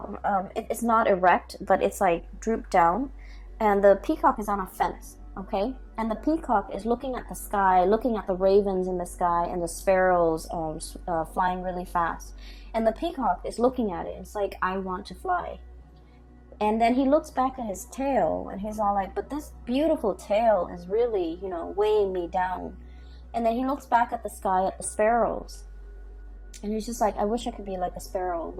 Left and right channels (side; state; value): both; identical; correlation 1.00